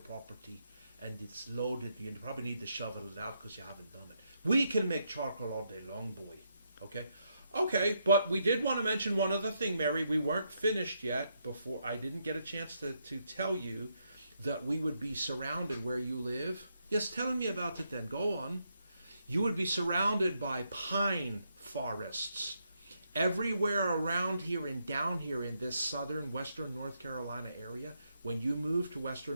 and it's loaded. You probably need to shovel it out because you haven't done it. We can make charcoal all day long, boy. Okay? Okay, but we did want to mention one other thing, Mary. We weren't finished yet before. I didn't get a chance to tell you that we would be surrounded where you live. Yes, tell me about it then. Go on. You would be surrounded by pine forests. Everywhere around here and down here in this southern, western North Carolina area, when you move to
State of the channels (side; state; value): both; inverted; correlation -0.78